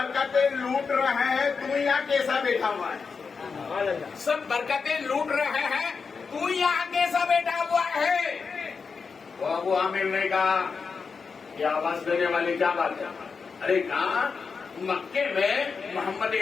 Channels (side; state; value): right; quieter; 5.2 dB